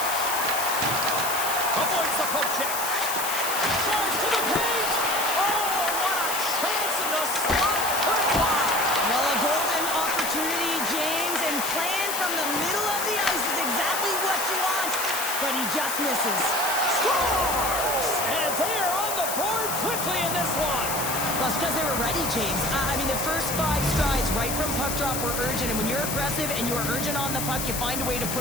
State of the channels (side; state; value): left; noise; hiss, 3 dB below the sound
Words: Avoids the poke check. Drives to the paint. Oh, what a chance in the slot. Put it wide. Well, a golden opportunity, James, and playing from the middle of the ice is exactly what you want, but he just misses. Scores! And they are on the board quickly in this one. Well, it's because they were ready, James. I mean, the first 5 strides right from puck drop were urgent, and when you're aggressive and you're urgent on the puck, you find a way to